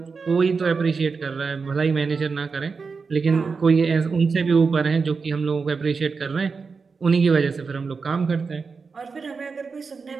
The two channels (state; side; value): quieter; left; 4.9 dB